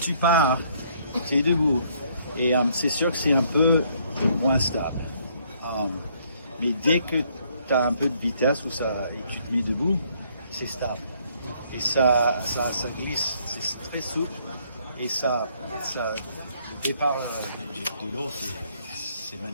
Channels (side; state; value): both; inverted; correlation -0.66